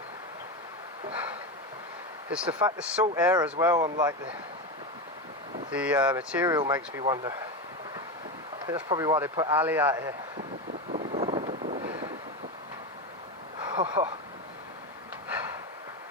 It's the fact the salt air as well on like the material makes me wonder. I think that's probably why they put Ali out here.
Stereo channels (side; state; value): both; normal; correlation 0.17